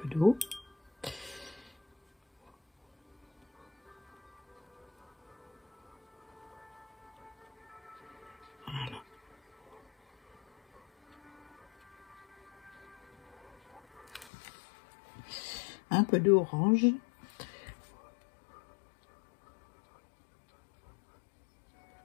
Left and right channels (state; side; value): drops out; right; at 14.3 s